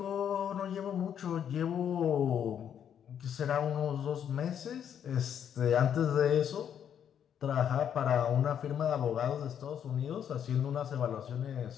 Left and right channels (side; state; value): right; quieter; 8.9 dB